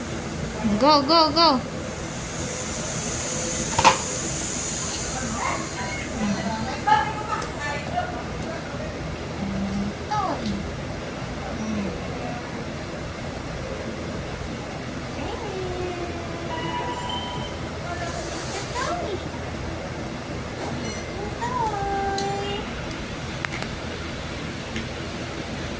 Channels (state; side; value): identical; both; correlation 1.00